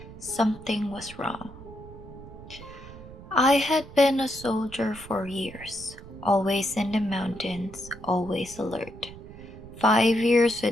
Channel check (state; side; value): noise; right; rumble, 16 dB below the sound